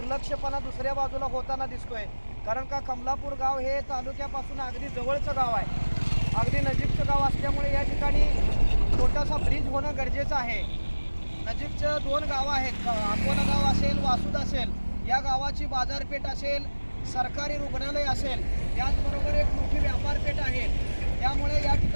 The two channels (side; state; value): both; inverted; correlation -1.00